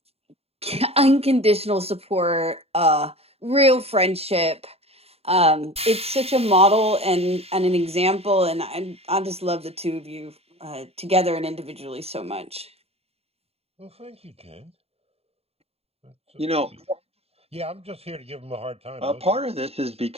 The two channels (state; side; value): late; left; 0.29 ms